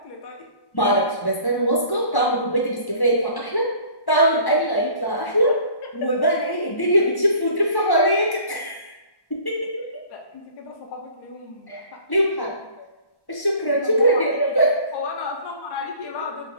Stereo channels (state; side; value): late; right; 1.0 ms